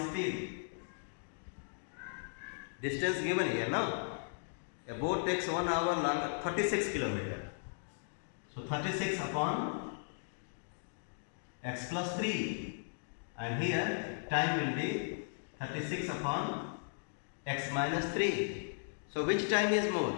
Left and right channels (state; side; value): silent; right; digital silence